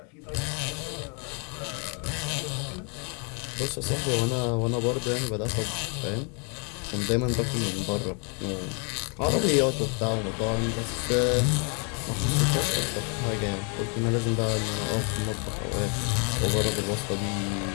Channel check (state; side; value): quieter; right; 37.7 dB